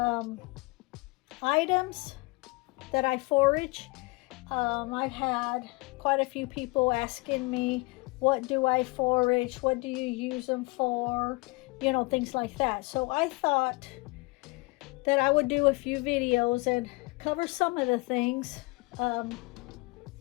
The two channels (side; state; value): right; quieter; 26.2 dB